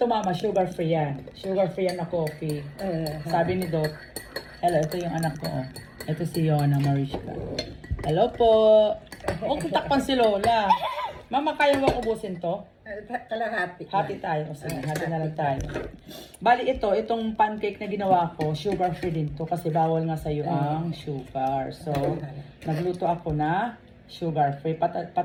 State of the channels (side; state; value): both; identical; correlation 1.00